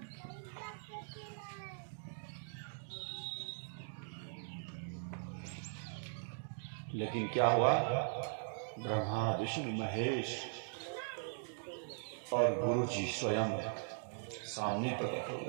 लेकिन क्या हुआ? ब्रह्मा विष्णु महेश और गुरु जी स्वयं सामने प्रकट हो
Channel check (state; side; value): silent; left; digital silence